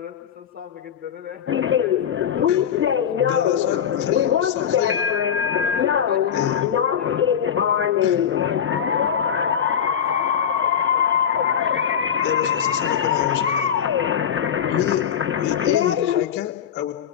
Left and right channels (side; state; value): right; quieter; 8.5 dB